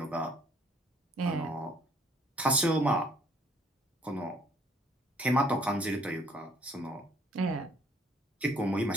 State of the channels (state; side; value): normal; both; correlation 0.61